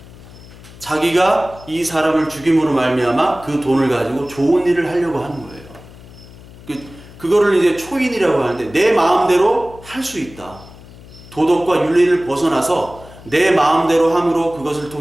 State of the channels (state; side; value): noise; left; hum, 20 dB below the sound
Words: 자기가 이 사람을 죽임으로 말미암아 그 돈을 가지고 좋은 일을 하려고 하는 거예요. 그거를 이제 초인이라고 하는데 내 마음대로 할 수 있다. 도덕과 윤리를 벗어나서 내 마음대로 함으로 그것을